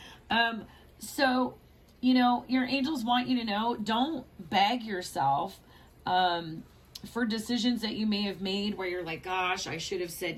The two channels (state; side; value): identical; both; correlation 1.00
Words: So, your angels want you to know, don't beg yourself for decisions that you may have made where you're like, gosh, I should have